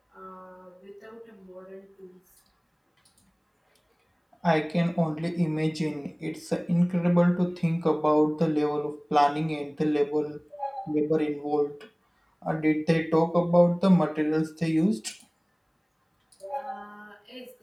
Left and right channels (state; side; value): identical; both; correlation 1.00